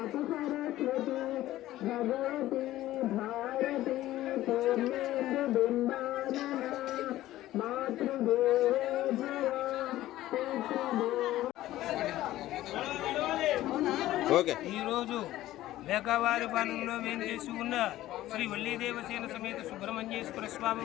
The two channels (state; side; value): quieter; right; 15.0 dB